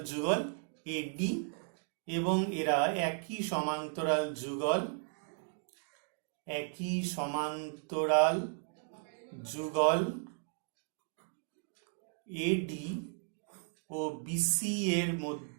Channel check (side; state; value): left; silent; 54 dB below the other